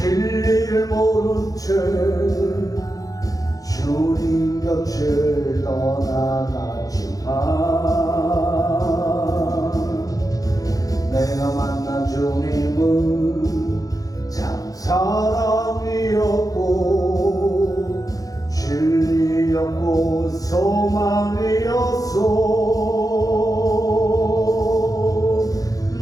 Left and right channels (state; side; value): late; right; 0.17 ms